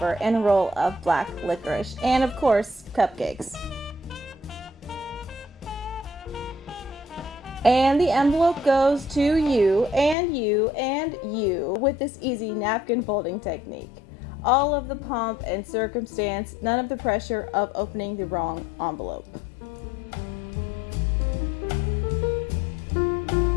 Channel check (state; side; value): drops out; right; at 10.2 s